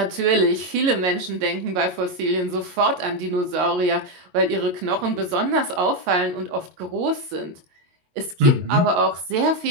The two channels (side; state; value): left; late; 22 ms